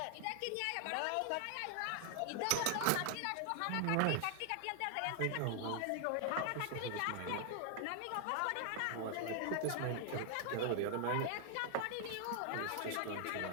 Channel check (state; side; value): different; both; correlation 0.00